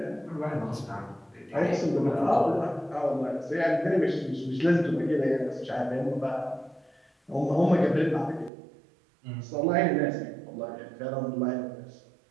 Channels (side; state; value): left; drops out; at 8.5 s